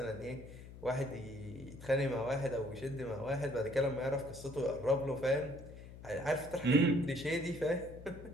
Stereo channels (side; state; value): left; noise; hum, 15 dB below the sound